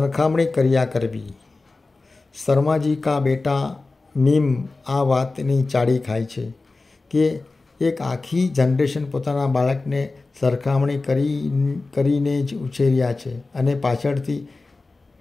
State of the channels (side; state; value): right; quieter; 3.5 dB